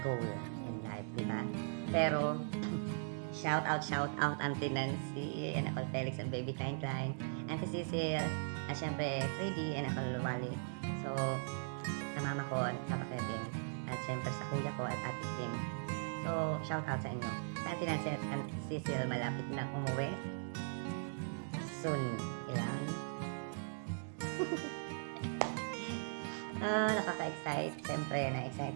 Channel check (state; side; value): silent; left; digital silence